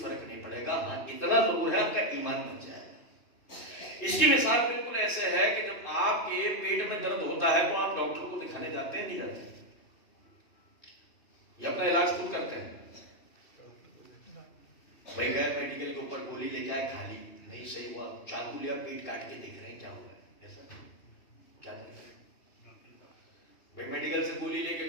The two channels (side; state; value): right; late; 3.2 ms